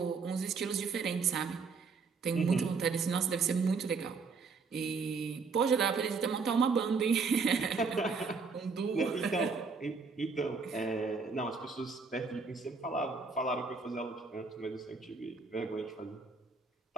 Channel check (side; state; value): left; quieter; 4.8 dB